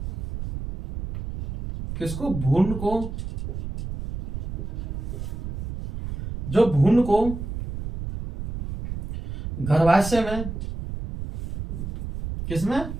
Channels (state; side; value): noise; right; rumble, 7 dB below the sound